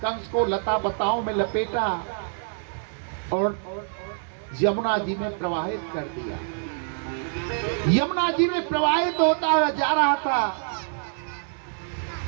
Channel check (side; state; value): left; silent; 61 dB below the other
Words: को लता बताओं में लपेटा और यमुना जी में प्रवाहित कर दिया। यमुना जी में प्रवाहित होता हुआ जा रहा था।